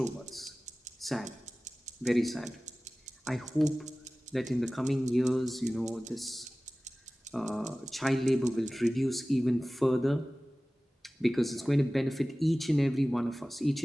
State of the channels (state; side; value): normal; both; correlation 0.97